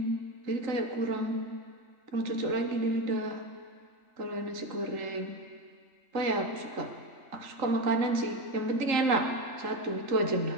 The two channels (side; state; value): left; late; 3.8 ms